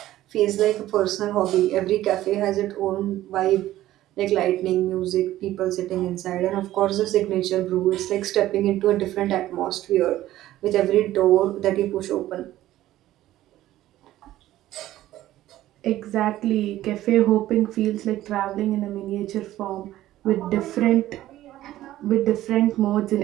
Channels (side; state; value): left; quieter; 14.5 dB